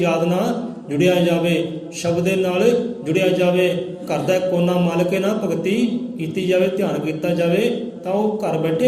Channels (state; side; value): identical; both; correlation 1.00